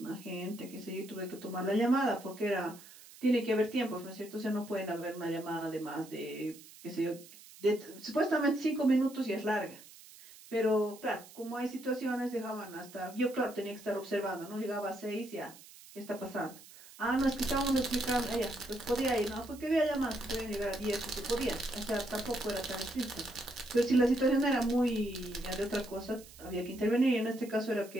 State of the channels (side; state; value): right; noise; hiss, 20 dB below the sound